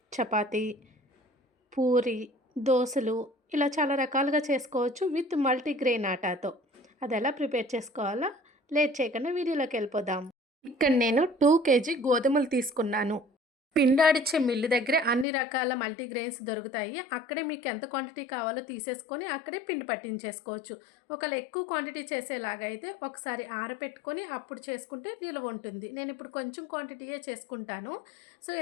చపాతీ, పూరి, దోసలు ఇలా చాలా రకాలుగా చేసుకోవచ్చు విత్ మల్టీగ్రెయిన్ ఆటాతో. అది ఎలా ప్రిపేర్ చేసుకోవాలో లేట్ చేయకుండా వీడియోలోకి వెళ్ళిపోదాం. ఇక్కడ నేను 2 కేజీ గోధుమలు తీసుకున్నాను. పిండాడిచ్చే మిల్లు దగ్గరే అన్ని రకాల మల్టీగ్రెయిన్స్ దొరుకుతాయి. అక్కడే మీకు ఎంత క్వాంటిటీ కావాలో తీసేసుకొని అక్కడే పిండి పట్టించేసుకోవచ్చు. ఒకవేళ ఎక్కువ క్వాంటిటీ చేసేలాగా అయితే ఒకసారి ఆరబెట్టుకొని అప్పుడు చేసుకుంటే నిలువ ఉంటుంది. నేను ఇప్పుడు కొంచెం క్వాంటిటీయే చేసుకుంటాను. సో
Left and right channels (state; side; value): drops out; right; at 15.2 s